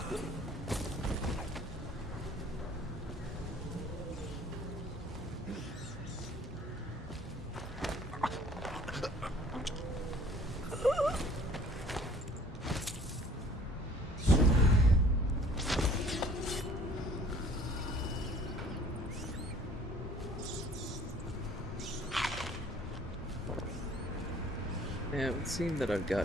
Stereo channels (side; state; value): both; normal; correlation 0.54